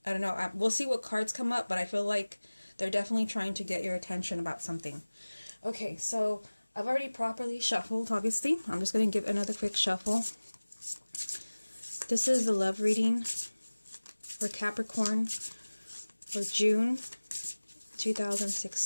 I don't know, we'll see what cards come up, but I feel like they're definitely trying to get your attention about something. Okay, so I've already properly shuffled, obviously. I'm just going to give another quick shuffle. This is the love reading for Capricorn for June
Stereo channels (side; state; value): both; inverted; correlation -1.00